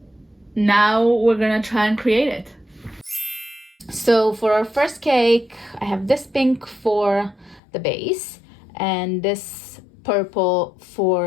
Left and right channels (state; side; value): drops out; right; at 7.6 s